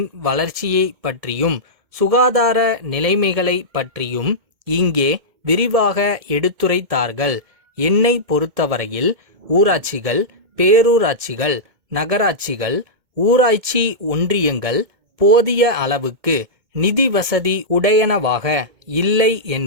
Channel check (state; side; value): late; left; 2.2 ms